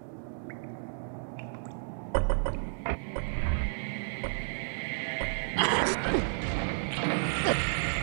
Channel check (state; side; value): silent; left; digital silence